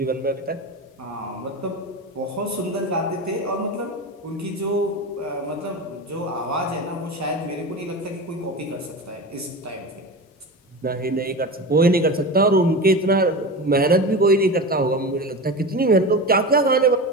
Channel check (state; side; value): normal; both; correlation 0.26